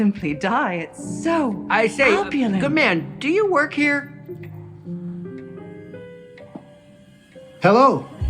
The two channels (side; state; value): both; identical; correlation 1.00